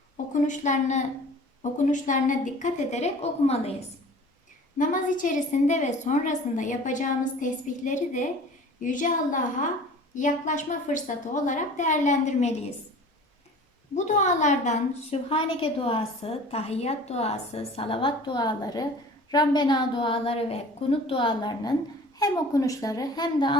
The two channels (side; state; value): both; normal; correlation 0.44